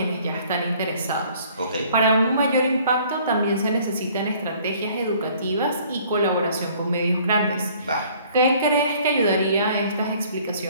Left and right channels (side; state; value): both; inverted; correlation -0.56